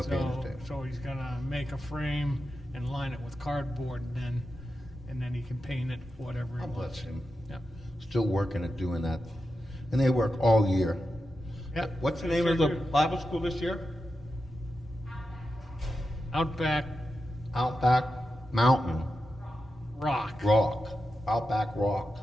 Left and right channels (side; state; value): both; normal; correlation 0.89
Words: painter's tape. So he's gonna make a frame and line it with cardboard, and then he can paint it whatever he God wants. bless him. Yeah. Still working at doing that. And they work all year. Yeah. What's the name of the Bible school this year? Outback Outback Mountain Rock. Outback Rock.